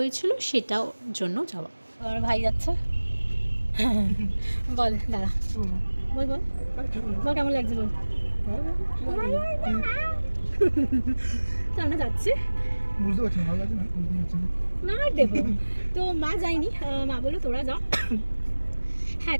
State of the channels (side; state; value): both; inverted; correlation -1.00